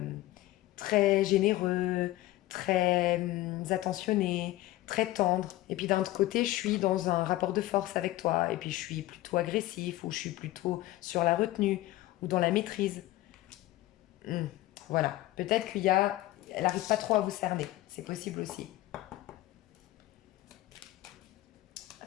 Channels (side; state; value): right; quieter; 16.7 dB